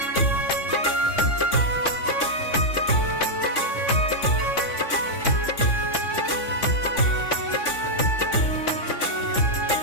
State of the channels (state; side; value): late; right; 3.5 ms